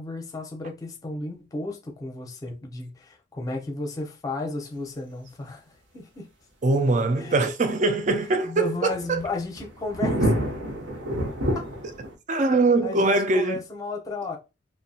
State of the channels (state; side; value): normal; both; correlation 0.44